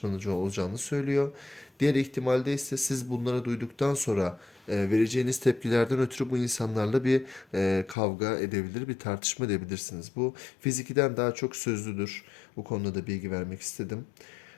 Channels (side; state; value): right; drops out; at 8.0 s